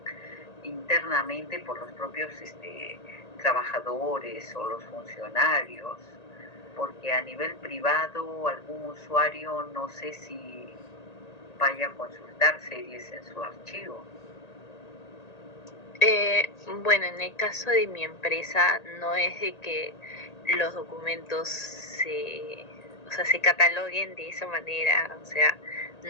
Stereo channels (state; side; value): late; right; 1.8 ms